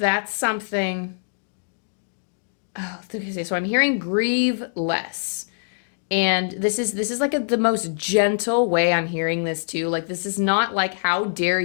something. Oh, okay, so I'm hearing grieve less. And this is like the most gentle way I'm hearing this too. Like, this is not like, how dare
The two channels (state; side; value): silent; right; digital silence